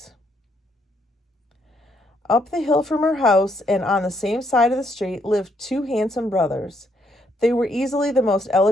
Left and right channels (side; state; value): both; normal; correlation 0.73